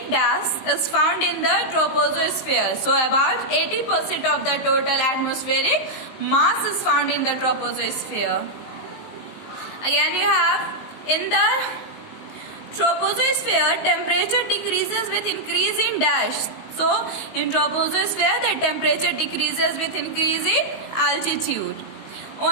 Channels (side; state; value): right; late; 19 ms